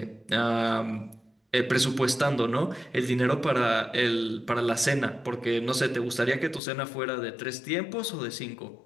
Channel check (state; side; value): drops out; right; at 6.6 s